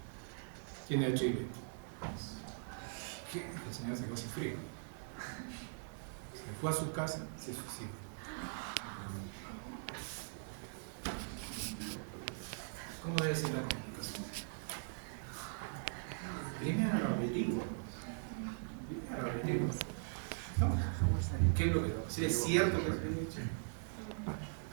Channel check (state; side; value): silent; left; digital silence